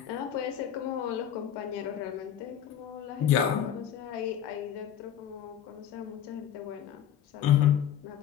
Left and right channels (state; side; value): quieter; right; 9.8 dB